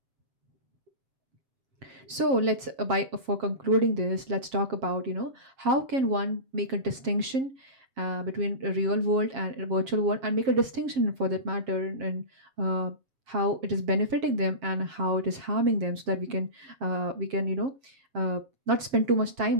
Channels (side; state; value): left; late; 7.4 ms